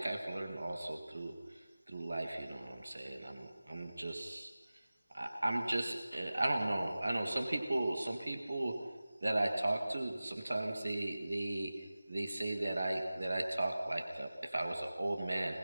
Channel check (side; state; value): both; inverted; correlation -0.97